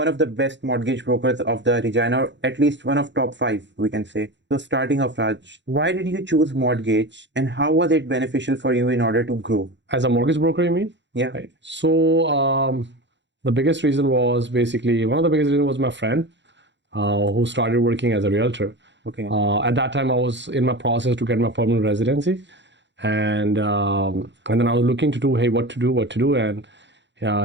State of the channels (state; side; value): late; left; 0.52 ms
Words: of the best mortgage brokers of the Regina, or at least one of top five, we can say. So starting off, Raj, why did you choose mortgage and how was it beneficial for you in order to grow? As a mortgage broker, you mean? Yeah. Right. So the biggest reason was basically, one of the biggest reasons was my friend who started working as a realtor. Okay. At that time, I was in my process to get my permanent residency, and then I was looking to do, hey, what to do, and